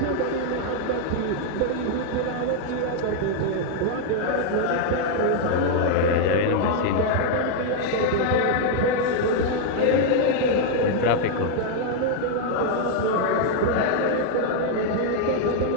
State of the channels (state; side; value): different; both; correlation 0.00